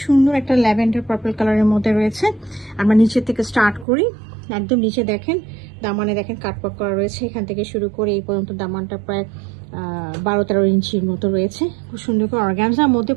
সুন্দর একটা ল্যাভেন্ডার পার্পল কালারের মধ্যে রয়েছে। আমরা নিচের থেকে স্টার্ট করি। একদম নিচে দেখেন, দামানে দেখেন কাটওয়ার্ক করা রয়েছে। এখান থেকে শুরু করে এই পর্যন্ত দামানটা প্রায় 12-13 ইঞ্চির মতো রয়েছে। খুব সুন্দর করে অর্গানজার মধ্যে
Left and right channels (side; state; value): left; drops out; at 3.9 s